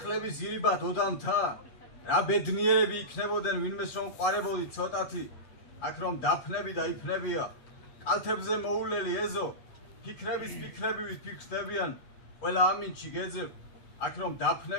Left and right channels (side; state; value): right; late; 7.8 ms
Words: ირიბად ოდამთა, რა ბედნიერები იქნებოდნენ ვინმეს რომ ყვარებოდი ცოტათი, აქ რომ დაფნები და იფნებია, კალთებზე მოულელი ეზო, ფიქრების ფიქრებივით ფიქრდებიან, ყველა ამინჩი გეძებ, აქ რომ